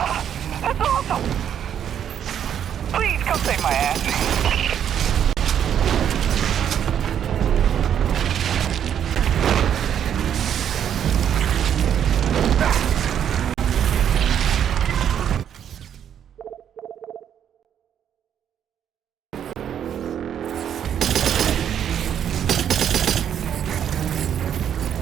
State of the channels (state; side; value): quieter; left; 9.2 dB